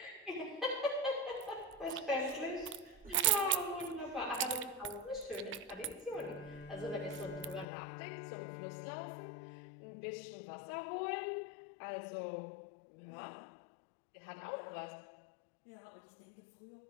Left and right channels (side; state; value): right; drops out; at 7.7 s